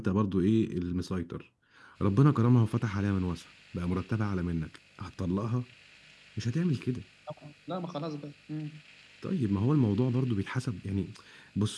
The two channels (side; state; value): both; identical; correlation 1.00